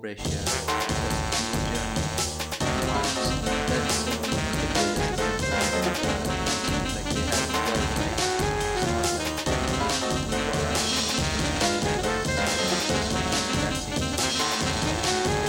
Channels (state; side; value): identical; both; correlation 1.00